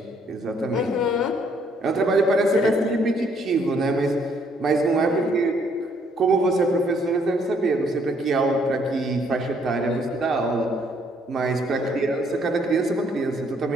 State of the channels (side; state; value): both; normal; correlation 0.67